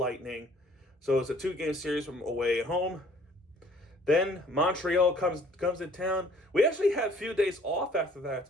So it's a 2-game series from away and home. Then Montreal comes in town. We actually had a few days off after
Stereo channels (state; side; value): normal; both; correlation 0.56